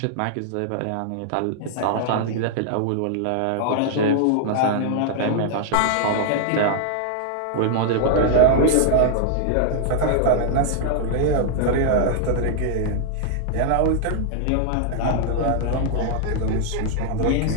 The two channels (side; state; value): both; different; correlation -0.01